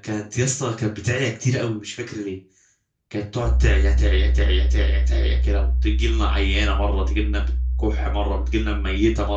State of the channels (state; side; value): identical; both; correlation 1.00